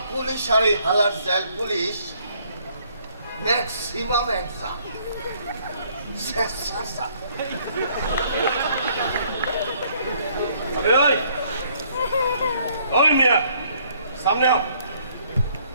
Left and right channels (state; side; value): inverted; both; correlation -0.64